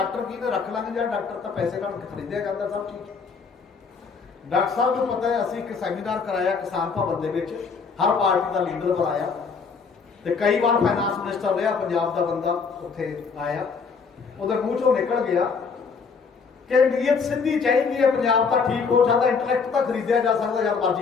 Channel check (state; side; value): quieter; right; 5.3 dB